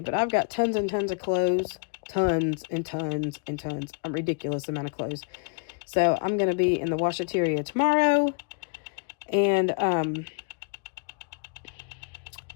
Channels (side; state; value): right; quieter; 37.9 dB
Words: But I've got tons and tons of clothes. Tons and tons and tons. A ridiculous amount of clothes. So I'm going to be in the washateria tomorrow. And,